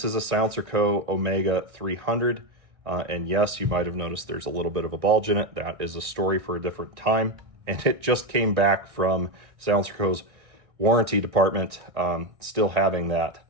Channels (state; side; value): late; left; 1.6 ms